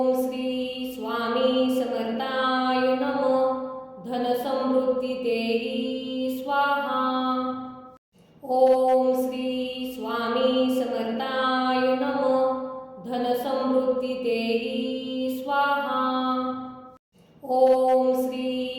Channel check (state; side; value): identical; both; correlation 1.00